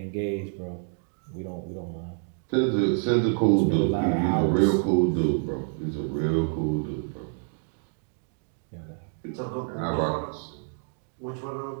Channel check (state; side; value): silent; left; 60 dB below the other